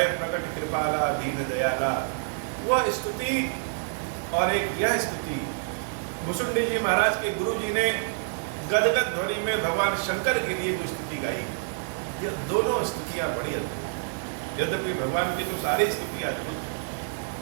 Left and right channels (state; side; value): silent; left; digital silence